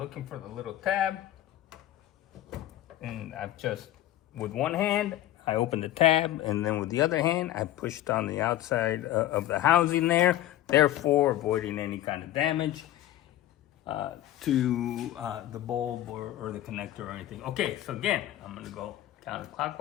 for the little tab. And I've just, with one hand, I opened the tab, and then with the other hand, I pushed on the outside of the housing there, therefore avoiding any kind of damage to the bulb or the connector or anything. Okay, so again, I'm gonna go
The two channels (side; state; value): right; quieter; 13.7 dB